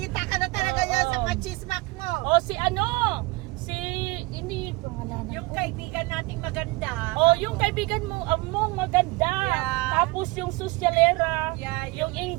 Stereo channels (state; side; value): quieter; left; 24.2 dB